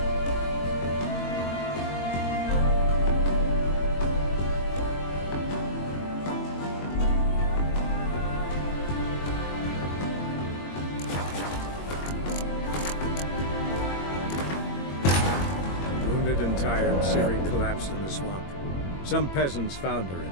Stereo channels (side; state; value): right; late; 21 ms